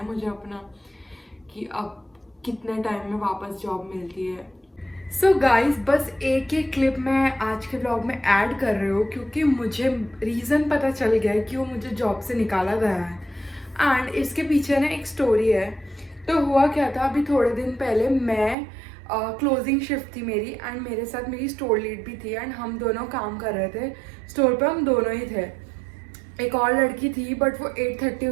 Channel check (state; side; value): drops out; left; at 18.6 s